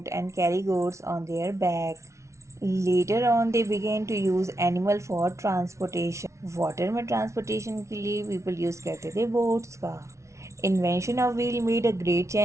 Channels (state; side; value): late; left; 0.14 ms